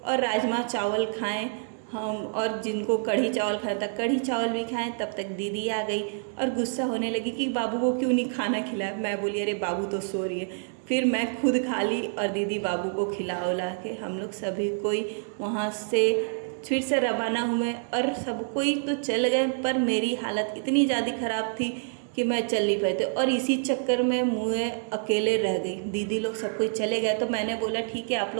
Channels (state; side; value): silent; left; 60 dB below the other